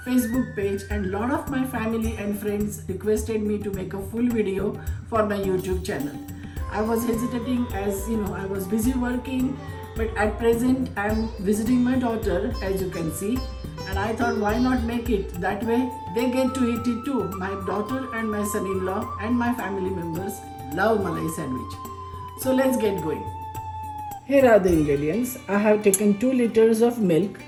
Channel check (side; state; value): both; identical; correlation 1.00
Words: Facebook page and lot of my family and friends requested me to make a full video for my YouTube channel. I was hesitating as I was busy working, but at present I am visiting my daughter, as you can see, and I thought why not make it that way they get to eat it too. My daughter and my son-in-law and my family members love Malai sandwich. So let's get going. Here are the ingredients. I have taken 2 liters of milk.